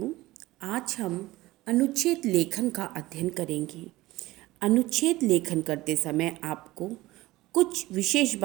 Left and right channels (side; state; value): left; quieter; 18.3 dB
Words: आज हम अनुच्छेद लेखन का अध्ययन करेंगे। अनुच्छेद लेखन करते समय आपको कुछ विशेष